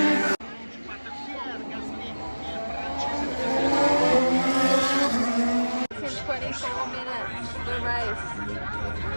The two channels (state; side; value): inverted; both; correlation -1.00